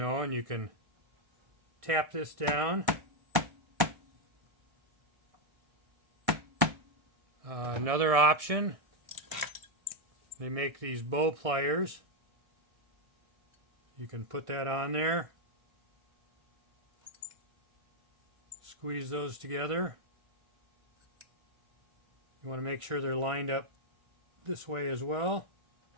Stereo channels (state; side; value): late; left; 1.6 ms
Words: and you can tap this down. Another option, they make these bow pliers. You can put that on there, squeeze those together. You want to make sure they're lined up this way as well.